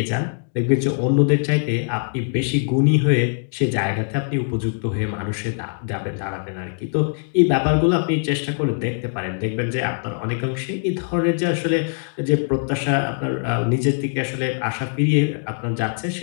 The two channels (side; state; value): right; silent; digital silence